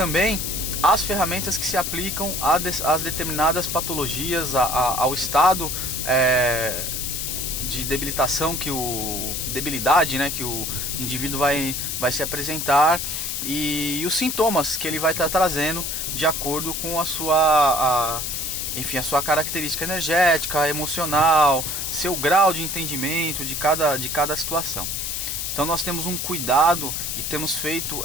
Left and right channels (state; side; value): noise; left; hiss, 3 dB below the sound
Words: as ferramentas que se aplicam às determinadas patologias, ao estado de debilitação debilidade, né, que o indivíduo vai se apresentar e os sintomas que ele vai estar trazendo de acordo com a sua característica energética, emocional, seu grau de entendimento de cada situação. Então nós temos um cuidado e temos feito